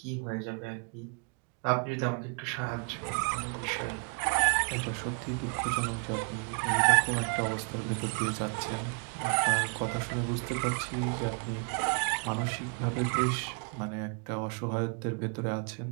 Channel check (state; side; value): quieter; left; 38.7 dB